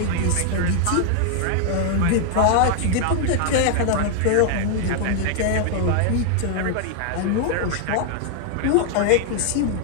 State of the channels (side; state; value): both; different; correlation 0.00